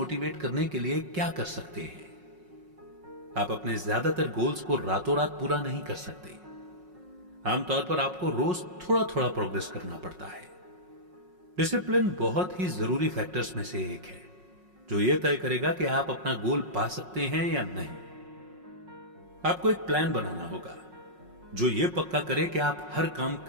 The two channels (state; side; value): late; left; 5.5 ms